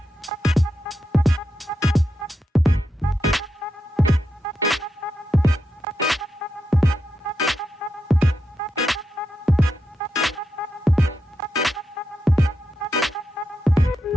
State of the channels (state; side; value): normal; both; correlation 0.86